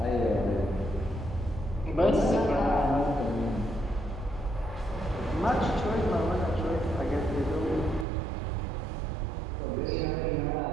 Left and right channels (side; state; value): left; drops out; at 8.1 s